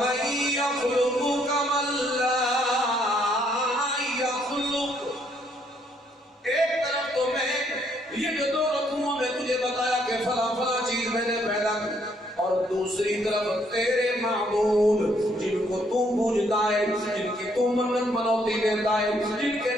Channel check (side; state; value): both; normal; correlation 0.69